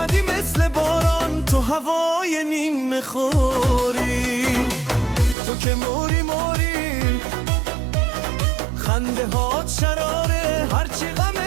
مثل باران تو هوای نیم خوری. تو که موری موری، خنده هات شراره، هرچی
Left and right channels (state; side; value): drops out; left; at 5.4 s